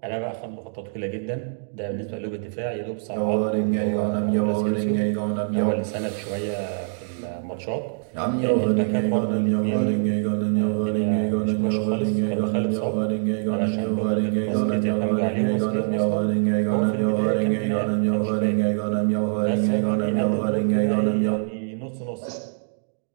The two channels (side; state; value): left; silent; digital silence